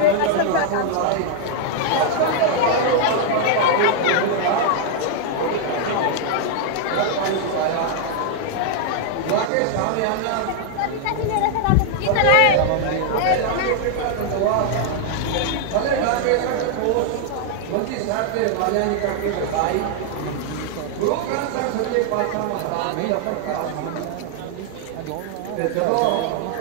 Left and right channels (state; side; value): different; both; correlation 0.00